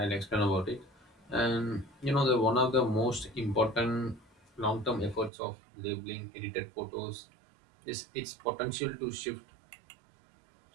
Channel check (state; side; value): drops out; left; at 5.3 s